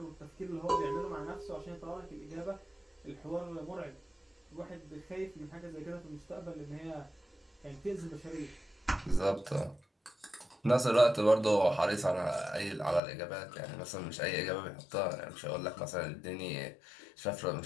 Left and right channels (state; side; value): drops out; right; at 13.0 s